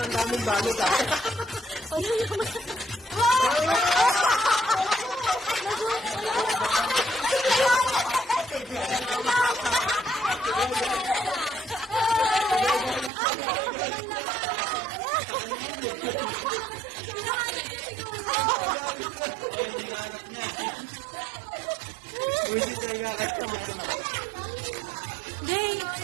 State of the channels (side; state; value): left; drops out; at 13.1 s